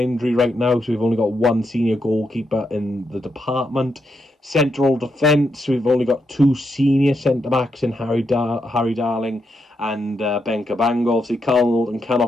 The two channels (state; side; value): normal; both; correlation 0.82